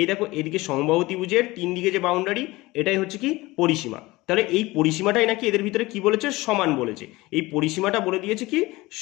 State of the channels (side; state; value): right; quieter; 20.5 dB